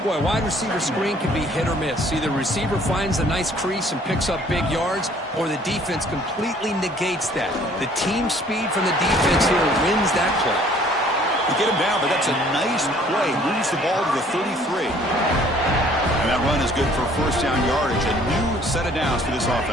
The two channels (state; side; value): normal; both; correlation 0.57